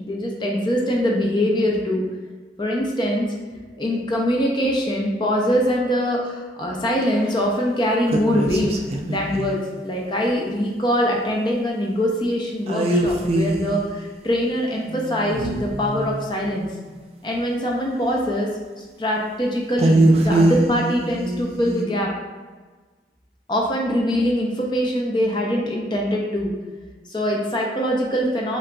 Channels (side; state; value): both; normal; correlation 0.67